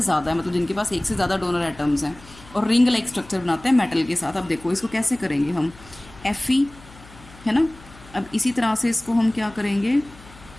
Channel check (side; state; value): left; noise; hum, 21 dB below the sound